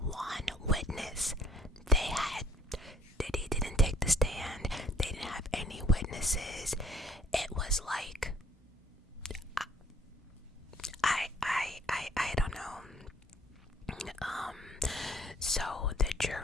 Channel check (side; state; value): both; normal; correlation 0.60